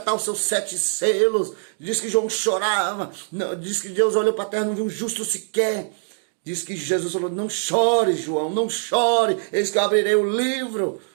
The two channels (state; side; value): silent; left; digital silence